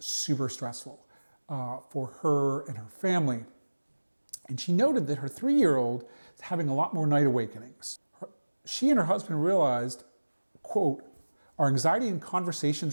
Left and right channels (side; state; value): both; inverted; correlation -1.00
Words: stressful for her and her family. And she noted that her 3-year-old is having a lot more night awakenings. She and her husband realized, quote, "Our anxiety and